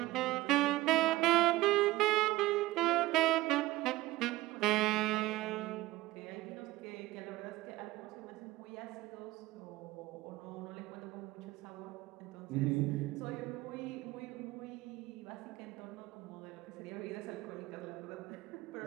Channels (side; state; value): left; quieter; 18.2 dB